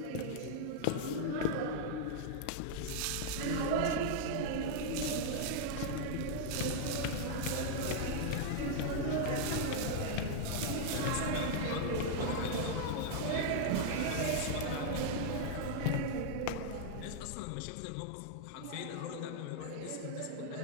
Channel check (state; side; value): different; both; correlation -0.01